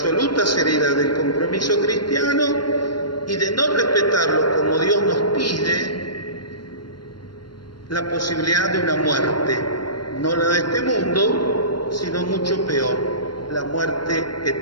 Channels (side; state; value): right; late; 0.72 ms